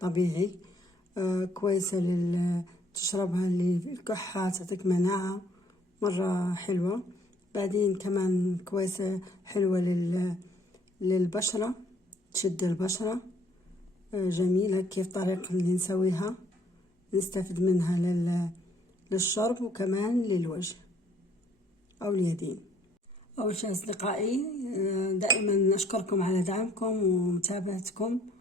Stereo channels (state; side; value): normal; both; correlation 0.62